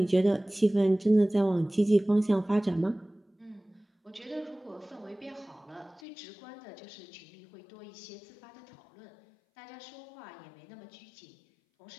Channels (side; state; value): right; drops out; at 6.0 s